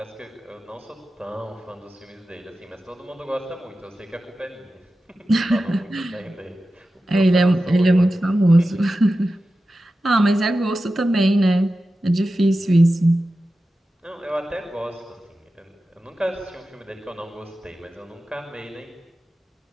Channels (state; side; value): normal; both; correlation 0.93